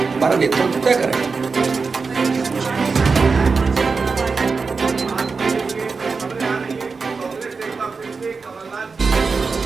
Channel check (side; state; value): left; quieter; 4.7 dB